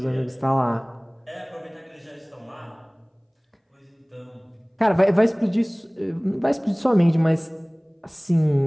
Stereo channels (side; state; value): both; identical; correlation 1.00